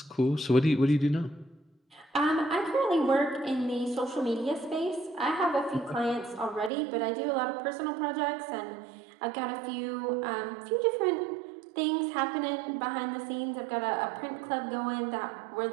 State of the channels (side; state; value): left; drops out; at 6.7 s